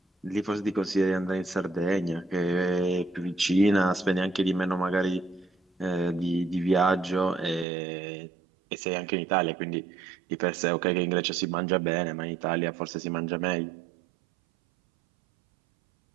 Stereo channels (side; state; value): left; drops out; at 7.7 s